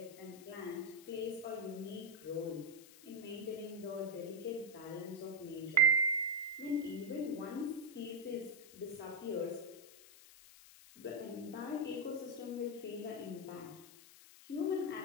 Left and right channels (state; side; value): noise; left; hiss, 19 dB below the sound